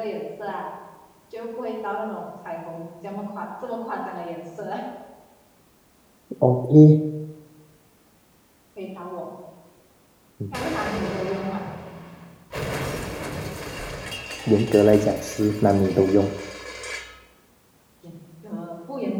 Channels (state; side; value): identical; both; correlation 1.00